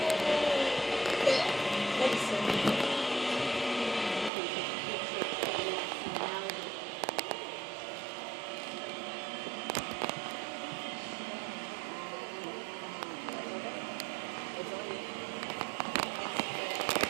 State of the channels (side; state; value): left; drops out; at 4.3 s